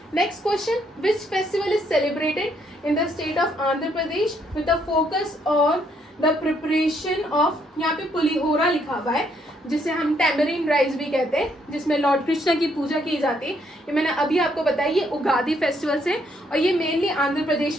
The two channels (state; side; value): normal; both; correlation 0.71